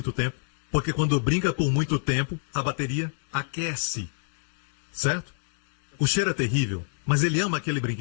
tempo, porque quando brinca por muito tempo, a bateria aquece. Certo? O cheiro é terrível, mas ele ama aquele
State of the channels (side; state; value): right; silent; digital silence